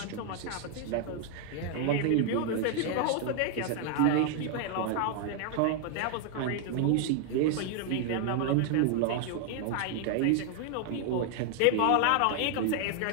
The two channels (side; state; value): both; different; correlation 0.00